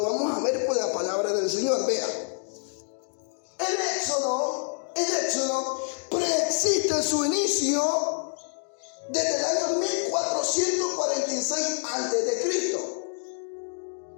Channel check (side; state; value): right; silent; 60 dB below the other